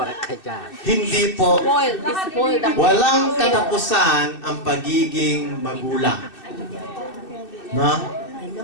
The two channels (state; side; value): late; right; 2.6 ms